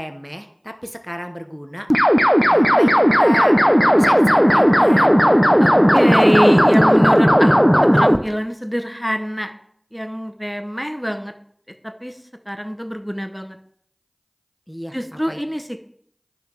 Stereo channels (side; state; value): both; identical; correlation 1.00